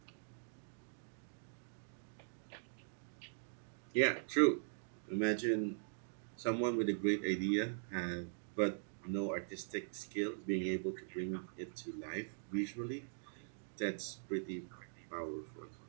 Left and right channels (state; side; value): silent; left; digital silence